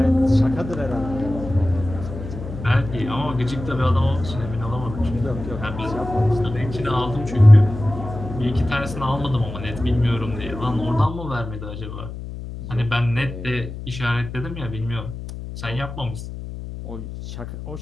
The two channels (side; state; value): left; noise; hum, 9 dB below the sound